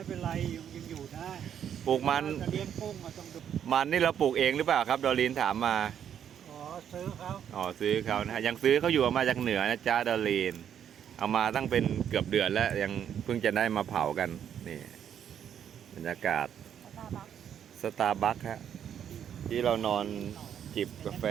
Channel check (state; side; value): quieter; left; 9.1 dB